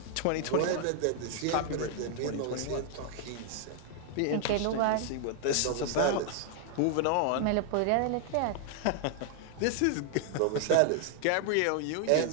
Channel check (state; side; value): different; both; correlation 0.00